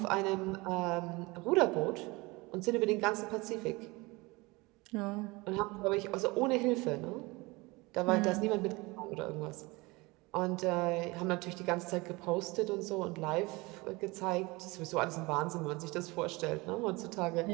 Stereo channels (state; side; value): quieter; left; 23.8 dB